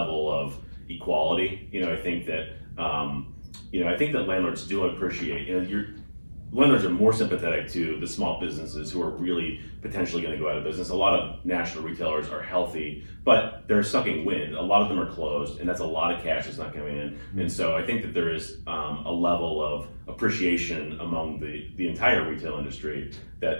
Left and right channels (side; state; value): both; inverted; correlation -1.00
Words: of equality. I think that I think that landlords do appreciate. Landlords are more sympathetic to the small businesses who are really potentially going to go out of business. A lot of national retailers are healthy, but they're sucking wind. A lot of them are closed, and that's a lot of cash that's not coming in. And so I think that there is a level of appreciation among the entire retail industry